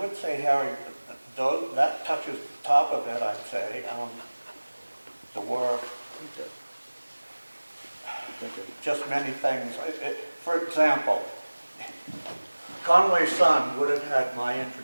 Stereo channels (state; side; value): inverted; both; correlation -1.00